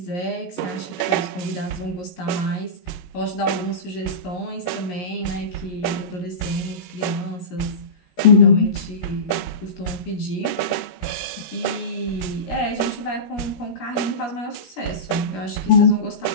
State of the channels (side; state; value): right; late; 16 ms